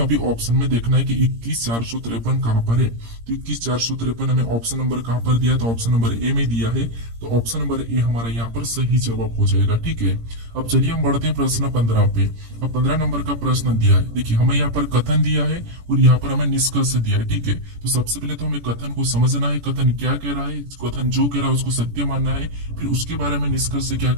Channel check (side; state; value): left; late; 17 ms